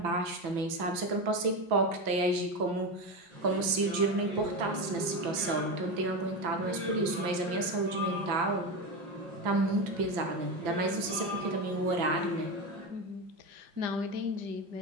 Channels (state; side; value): late; left; 5.9 ms